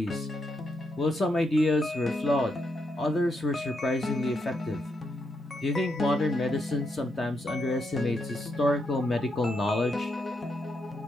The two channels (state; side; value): normal; both; correlation 0.81